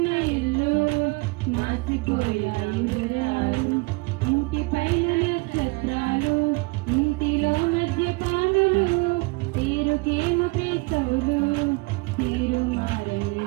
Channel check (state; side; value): quieter; left; 27.0 dB